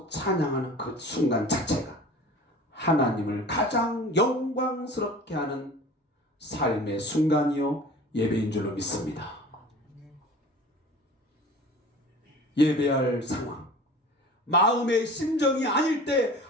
찬양하는 그 순간 자체가 하나님을 가장 영광스럽게 하는 삶의 순간이요 예배인 줄로 믿습니다. 예배할 상황, 마음의 심정이 아닐 때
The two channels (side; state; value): both; normal; correlation 0.41